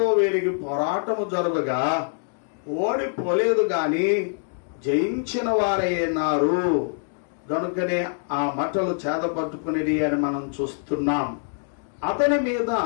వీరికి పోరాటము జరగగా ఓడిపోలేదు గాని జయించిన వారైనారు. గనుకనే ఆ మట్టలు చేతపట్టుకునేది అని మనం చూస్తున్నాం. అతని మీద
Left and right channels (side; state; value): right; silent; digital silence